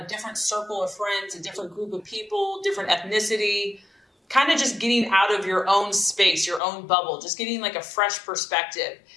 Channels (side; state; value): right; drops out; at 6.6 s